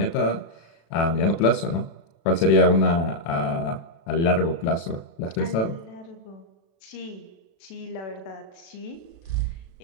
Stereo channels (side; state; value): right; late; 36 ms